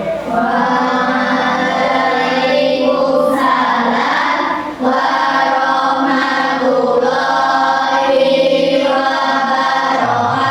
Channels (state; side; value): identical; both; correlation 1.00